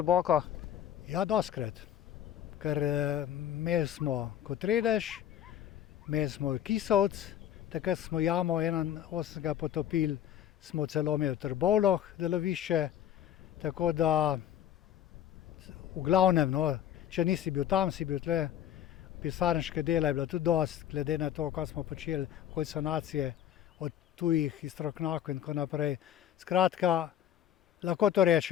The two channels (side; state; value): right; quieter; 10.7 dB